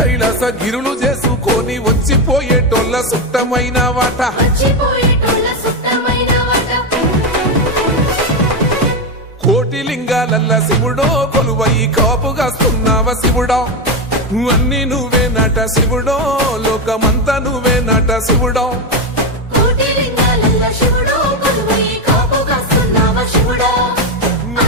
గిరులు చేసుకొని వచ్చిపోయేటోళ్ళ సుట్టమైన వాట కోటి లింగాలల్ల శివుడో కొలువయి కాపుగాస్తున్నావ శివుడో అన్ని నువ్వే నట శివుడో లోకమంతా నువ్వే నట శివుడో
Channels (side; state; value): both; normal; correlation 0.11